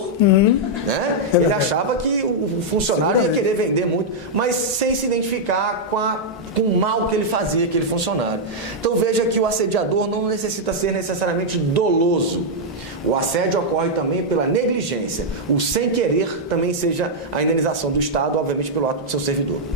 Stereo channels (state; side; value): normal; both; correlation -0.05